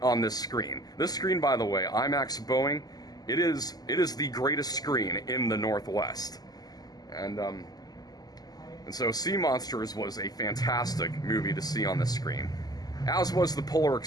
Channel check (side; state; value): right; late; 0.19 ms